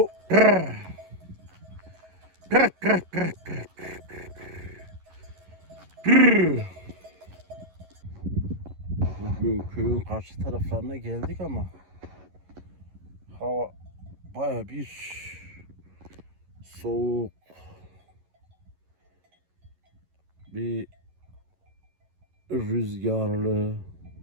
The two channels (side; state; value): left; late; 11 ms